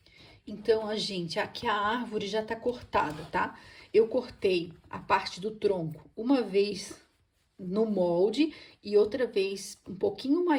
Então, aqui a árvore já tá cortada, tá? Eu cortei a parte do tronco uma vez no molde e outra vez um pouquinho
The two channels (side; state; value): both; identical; correlation 1.00